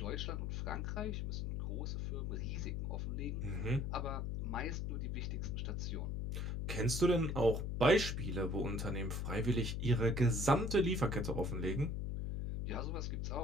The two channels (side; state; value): left; noise; hum, 1 dB below the sound